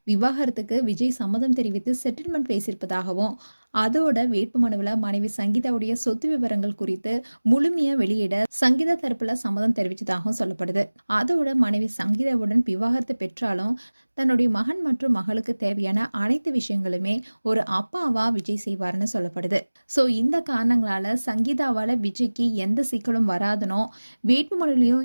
விவாகரத்துக்கு விஜய் சம்மதம் தெரிவித்து செட்டில்மெண்ட் பேசியிருப்பதாகவும் அதோட வேட்புமனுவில் மனைவி சங்கீதாவுடைய சொத்து விவரங்கள் குறித்து முழுமையா வெளியிட சங்கீதா தரப்புல சம்மதம் தெரிவித்ததாகவும் சொல்லப்படுது. அதோட மனைவி சங்கீதாவுடன் விவாகரத்து பெற்றாலும் தன்னுடைய மகன் மற்றும் மகளுக்கு தேவையான அனைத்து விஷயங்களுமே ஒரு அப்பாவா விஜய் செய்வார்னு சொல்லப்படுது. ஸோ இந்த காரணங்களால சங்கீதாவால விஜய்க்கு எந்த சிக்கலும் வராதுனோ வேட்புமனுலையும்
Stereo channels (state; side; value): inverted; both; correlation -1.00